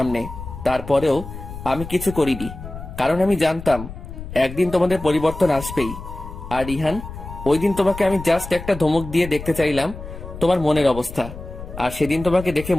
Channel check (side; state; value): left; noise; rumble, 11 dB below the sound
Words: তারপরেও আমি কিছু করিনি, কারণ আমি জানতাম একদিন তোমাদের পরিবর্তন আসবেই। আর রিহান, ওই দিন তোমাকে আমি জাস্ট একটা ধমক দিয়ে দেখতে চাইলাম তোমার মনের অবস্থা, আর সেদিন তোমাকে দেখে